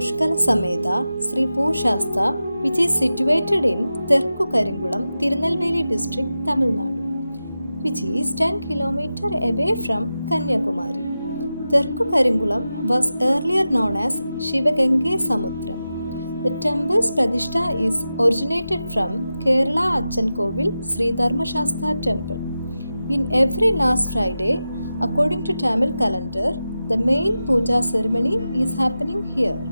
Sameda Sri Pooshastha, which is situated in Terku Karingulam, Tirunelveli district, Tamil Nadu, which is 10 km away from Kanyakumari. Terku Karingulam was earlier known as Shivagange Samudram. The temple's Pradishta is originated from Kerala Achankovil Sri Dharmashastra temple. In every last Friday, according to Tamil calendar, the main puja ceremony is happening here.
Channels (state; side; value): inverted; both; correlation -0.92